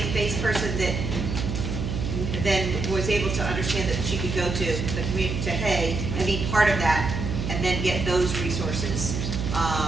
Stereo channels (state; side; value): noise; right; hum, 3 dB below the sound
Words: person that then was able to understand that she could go to the community, to Hay, and be part of that, and then get those resources.